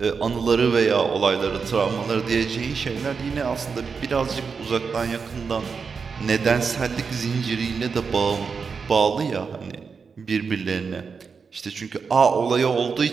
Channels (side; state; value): left; quieter; 5.5 dB